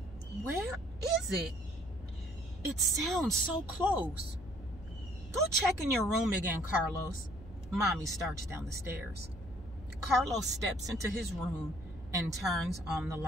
Where is it? It sounds so close. Go check in your room again, Carlos. Mommy starts down the stairs. Carlos steps into his room and turns on the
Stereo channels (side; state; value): left; noise; hum, 16 dB below the sound